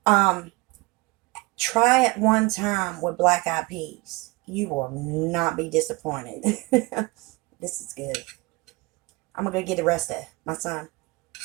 Um, Try it one time with black eyed peas. You will not be disappointed. This is good. I'm gonna go get the rest of my son,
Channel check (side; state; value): left; quieter; 23.9 dB